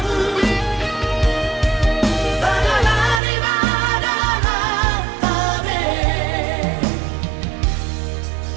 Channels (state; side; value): drops out; left; at 3.2 s